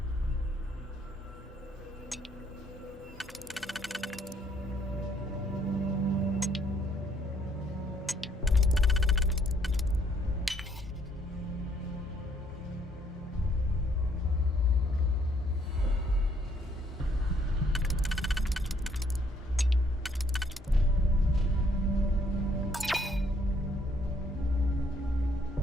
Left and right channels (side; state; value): both; normal; correlation 0.67